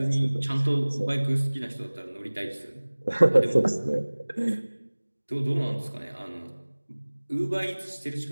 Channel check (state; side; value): inverted; both; correlation -1.00